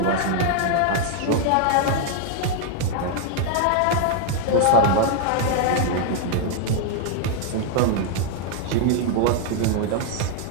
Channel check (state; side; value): different; both; correlation 0.00